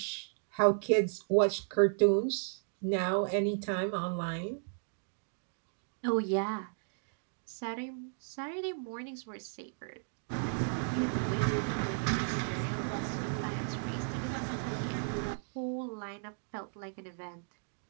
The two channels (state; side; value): silent; left; digital silence